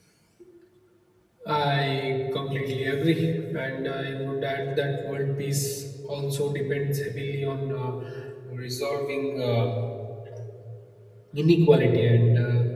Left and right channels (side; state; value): both; identical; correlation 1.00